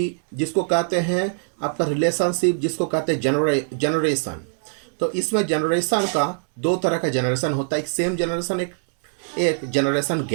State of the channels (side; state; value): left; silent; 64 dB below the other